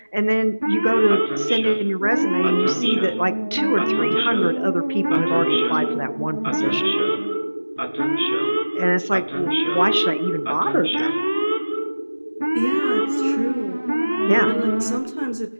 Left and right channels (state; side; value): inverted; both; correlation -1.00